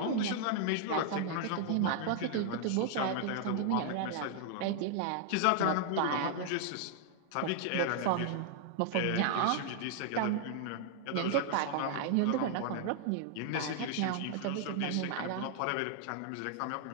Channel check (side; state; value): both; different; correlation 0.00